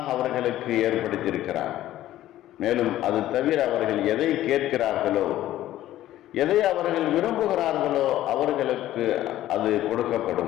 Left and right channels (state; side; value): quieter; right; 13.9 dB